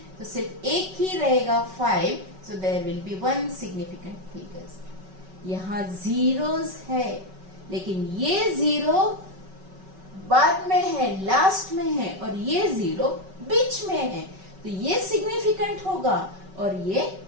तो सिर्फ एक ही रहेगा 5, so there will be 1 significant figures. यहाँ zeros है, लेकिन ये जीरो बाद में है, लास्ट में है, और ये जीरो बीच में है, तो ये सिग्निफिकेंट होगा और ये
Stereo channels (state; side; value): late; left; 5.3 ms